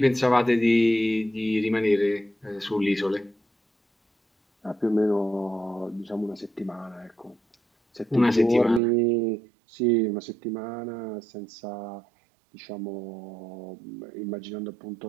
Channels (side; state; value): left; drops out; at 8.8 s